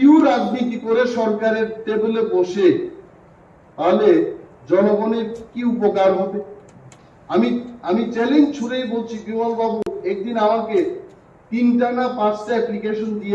রাজনীতি করে সরকারের টেবিলে বসে, তাহলে জনগণের কি উপকার হবে? আমি চ্যালেঞ্জ ছুড়েই বলছি, বিমল বাবু একদিন আমাকে 3টা না 5টা অ্যাপ্লিকেশন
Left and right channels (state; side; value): identical; both; correlation 1.00